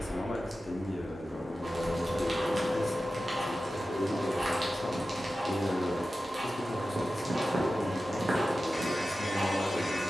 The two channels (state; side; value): normal; both; correlation 0.94